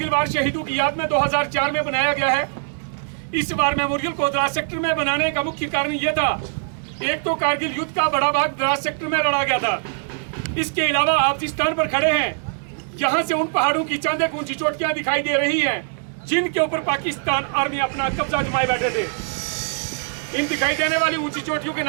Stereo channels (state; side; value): silent; left; 64 dB below the other